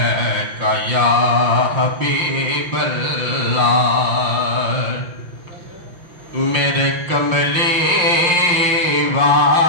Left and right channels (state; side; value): late; left; 5.7 ms